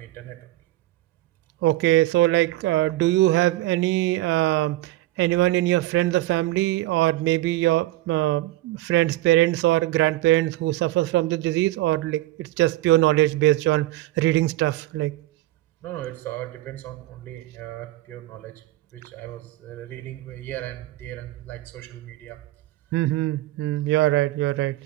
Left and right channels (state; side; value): quieter; left; 16.8 dB